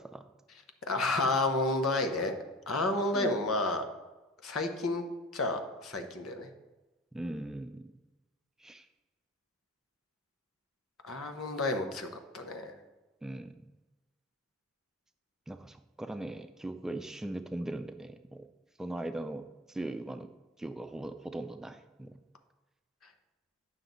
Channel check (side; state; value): both; normal; correlation 0.34